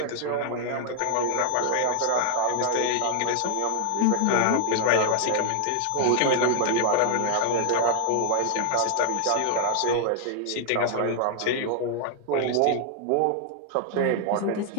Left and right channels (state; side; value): different; both; correlation 0.00